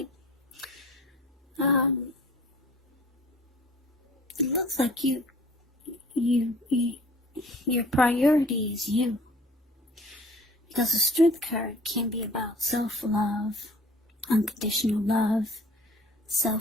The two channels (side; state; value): both; normal; correlation 0.49